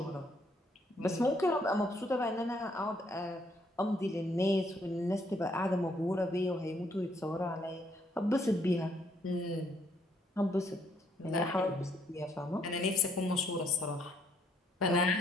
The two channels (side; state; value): both; normal; correlation 0.70